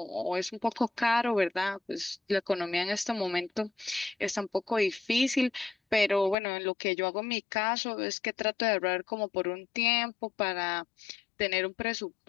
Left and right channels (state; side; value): drops out; right; at 6.4 s